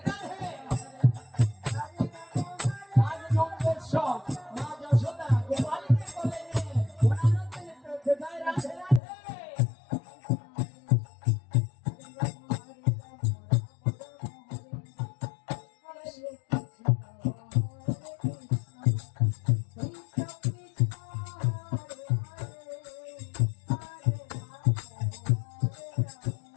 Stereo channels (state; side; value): drops out; right; at 9.0 s